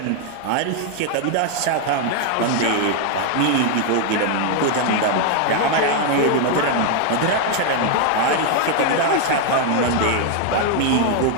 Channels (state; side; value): different; both; correlation 0.00